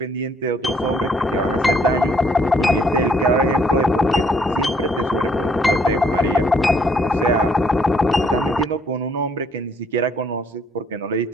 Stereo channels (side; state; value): both; normal; correlation 0.66